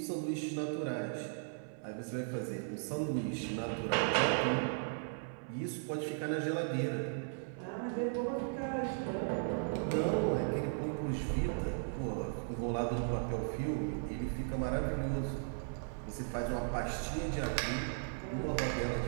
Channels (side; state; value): left; silent; 53 dB below the other